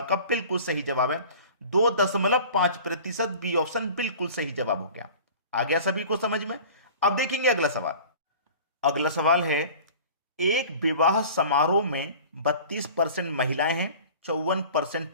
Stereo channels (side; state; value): both; inverted; correlation -0.42